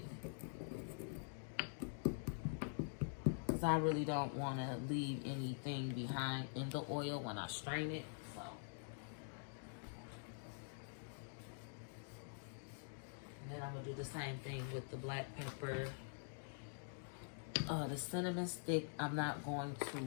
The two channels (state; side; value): silent; right; digital silence